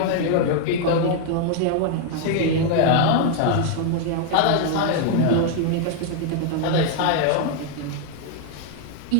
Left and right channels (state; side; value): different; both; correlation 0.00